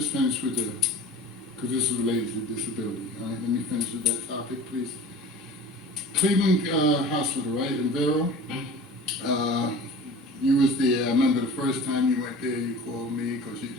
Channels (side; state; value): both; normal; correlation 0.40